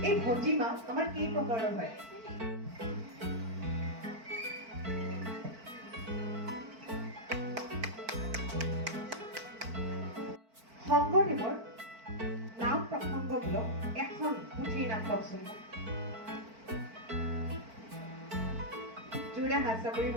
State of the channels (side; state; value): left; late; 4.5 ms